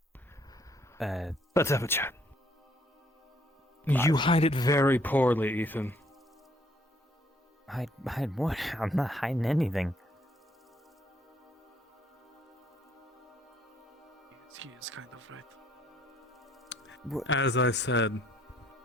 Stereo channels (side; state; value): both; normal; correlation 0.66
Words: Let's have a chat. You hide it very poorly, Ethan. Hide what? I'm not hiding anything. He is kind of right. What? As I said,